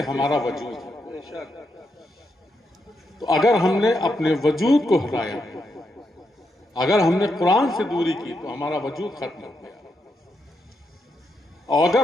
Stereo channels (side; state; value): both; normal; correlation 0.82